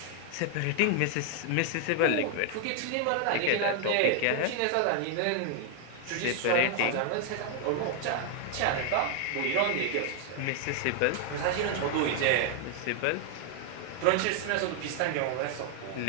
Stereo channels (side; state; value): both; different; correlation 0.00